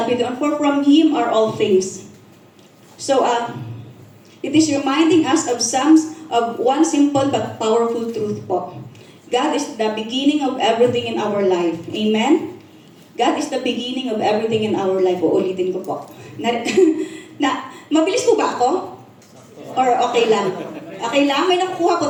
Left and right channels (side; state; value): both; identical; correlation 1.00